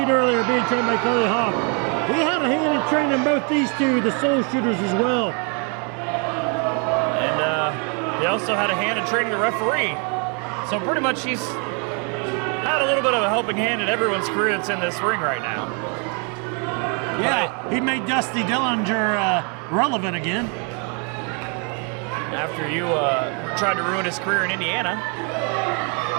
earlier being trained by Cody Hawk. He had a hand in training both these two, the Soul Shooters, as well. And he also had a hand in training the referee. So pretty much he's had a little bit of a helping hand in everyone's career that's in this ring right now. Yeah, he made Dusty Dillinger relevant again. After you tried to ruin his career in Indiana.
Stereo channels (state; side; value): quieter; left; 36.5 dB